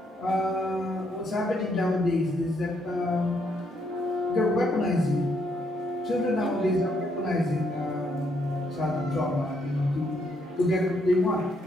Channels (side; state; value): both; normal; correlation 0.74